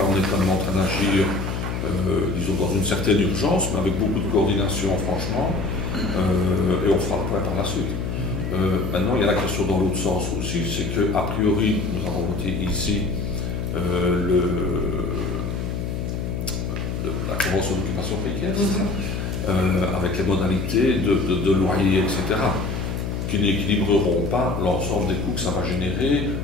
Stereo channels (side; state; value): left; noise; hum, 3 dB below the sound